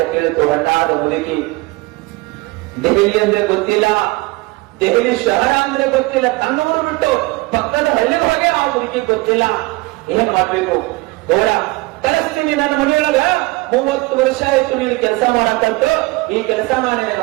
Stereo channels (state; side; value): quieter; left; 22.9 dB